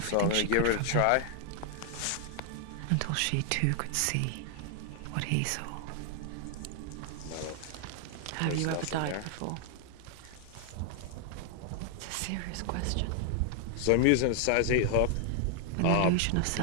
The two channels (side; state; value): both; different; correlation 0.00